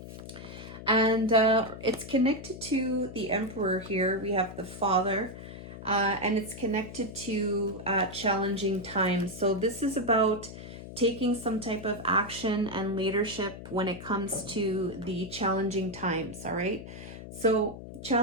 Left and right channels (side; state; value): left; noise; hum, 12 dB below the sound